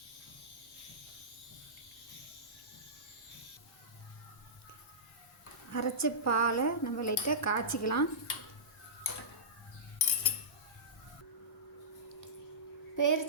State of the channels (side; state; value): both; normal; correlation -0.19